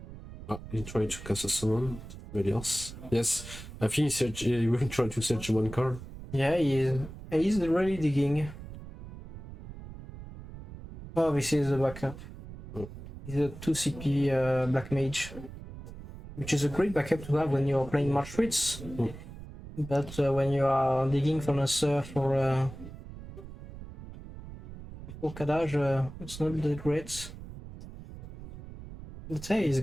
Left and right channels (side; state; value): right; noise; rumble, 13 dB below the sound